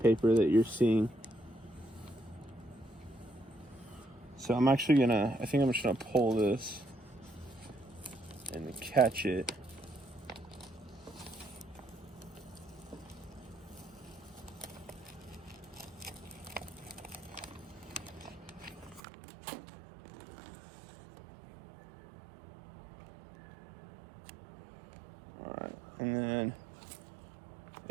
that you're seeing. So I'm actually gonna, I think I'm just gonna pull this and catch it. All right, and then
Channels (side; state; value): left; drops out; at 19.0 s